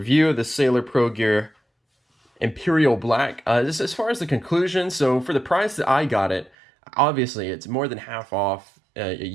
of the Sailor Pro Gear Imperial Black. This as far as the conclusion. So for the price that I got it, obviously it's more than half off. At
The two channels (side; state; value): left; drops out; at 6.5 s